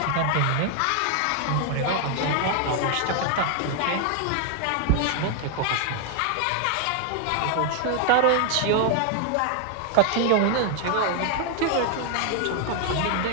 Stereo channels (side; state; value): both; different; correlation 0.00